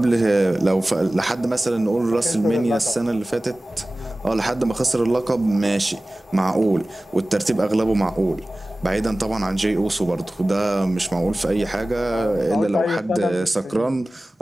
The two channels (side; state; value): both; normal; correlation 0.97